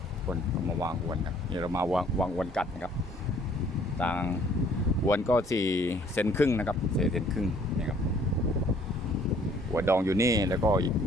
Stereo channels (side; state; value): both; normal; correlation 0.59